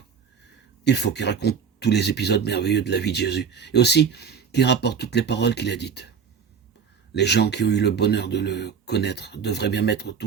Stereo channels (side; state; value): left; quieter; 6.7 dB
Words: il faut qu'il raconte tous les épisodes merveilleux de la vie de Jésus, et aussi qu'il rapporte toutes les paroles qu'il a dites. Les gens qui ont eu le bonheur de le connaître devraient bien mettre tout